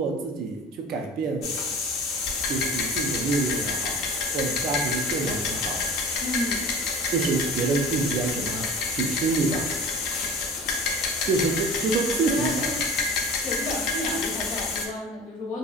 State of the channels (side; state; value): both; normal; correlation 0.39